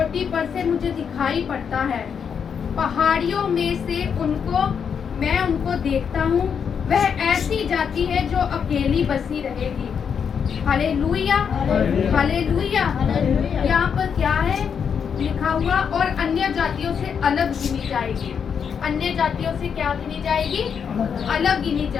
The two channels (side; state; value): right; quieter; 7.0 dB